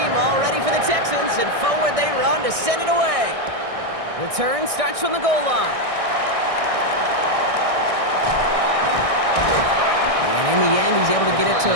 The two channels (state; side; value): late; left; 1.6 ms